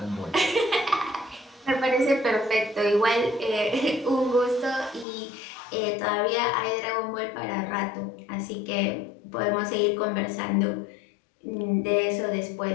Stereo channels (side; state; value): right; drops out; at 5.1 s